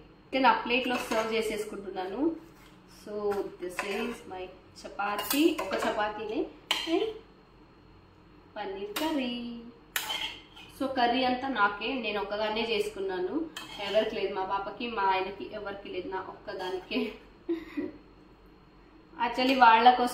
నేను ఆ ప్లేట్లో సర్వ్ చేసేసుకుంటున్నాను. So this is my chapati, ఒక చపాతీనే and paneer curry. So curry అంతా నాకే, నేను ఒక్కదాన్నే చేసుకున్నాను, ఎవరికి లేదు, మా పాపకి మా ఆయనకి ఎవరికి లేదు, నా ఒక్కదానికే. యాక్చువల్లీ వాళ్ళ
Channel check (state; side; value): identical; both; correlation 1.00